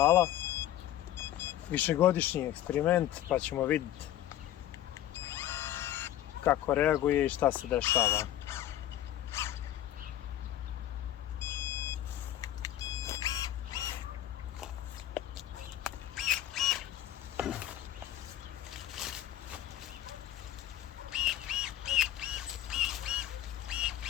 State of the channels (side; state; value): right; quieter; 12.6 dB